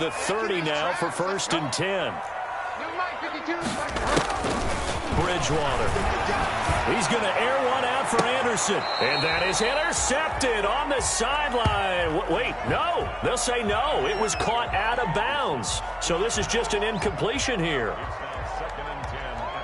30 now for first and 10. Bridgewater. He's going to air one out for Anderson. And that is intercepted on the sideline. Wait, no. They'll say no. It was caught out of bounds. So this is just an incompletion here. Second and 10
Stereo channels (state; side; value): identical; both; correlation 1.00